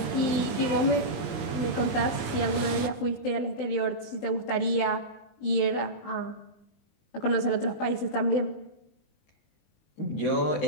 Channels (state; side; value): late; right; 19 ms